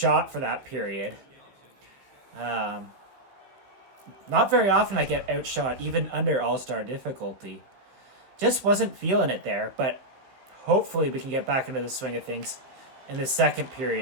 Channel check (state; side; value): late; left; 15 ms